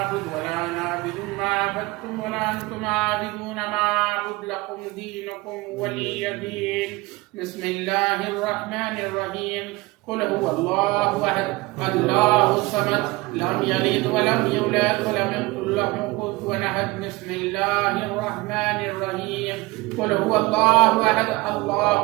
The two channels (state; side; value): quieter; left; 22.5 dB